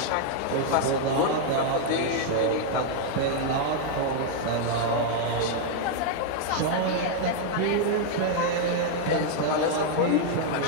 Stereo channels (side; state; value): both; different; correlation 0.00